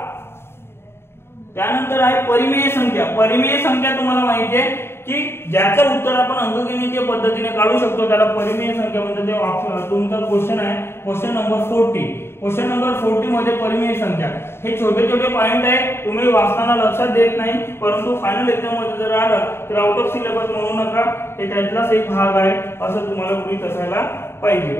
त्यानंतर आहे परिमेय संख्या. परिमेय संख्या तुम्हाला माहिती आहे की ज्याचं उत्तर आपण अंकगणितीय पद्धतीने काढू शकतो त्याला परिमेय संख्या म्हणतात. ते तुमचा क्वेश्चन आहे क्वेश्चन नंबर 40. क्वेश्चन नंबर 40 मध्ये परिमेय संख्या हे छोटे छोटे पॉइंट आहे, तुम्ही वाचताना लक्षात देत नाही, परंतु फायनल एक्झाम मध्ये जर आलं तर आउट ऑफ सिलेबस म्हणू नका, हे त्यातलाच एक भाग आहे असं तुम्हाला गृहीत असायला पाहिजे.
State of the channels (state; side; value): late; right; 0.12 ms